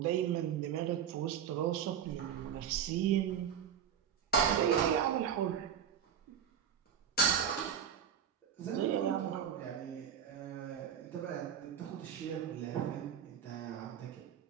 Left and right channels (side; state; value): left; quieter; 8.6 dB